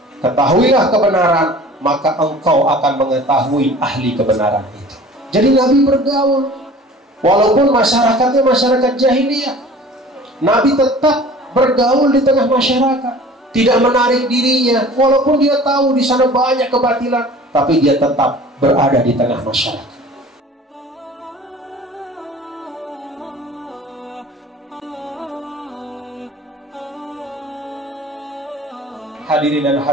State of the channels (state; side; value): normal; both; correlation 0.45